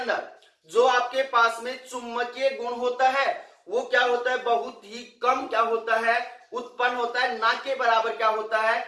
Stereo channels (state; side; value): identical; both; correlation 1.00